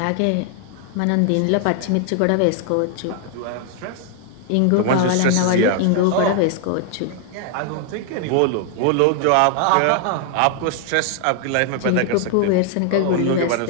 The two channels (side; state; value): both; different; correlation 0.00